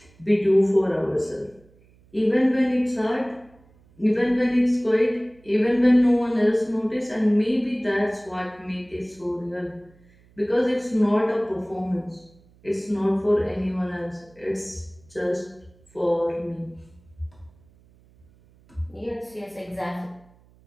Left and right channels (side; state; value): right; noise; hum, 29 dB below the sound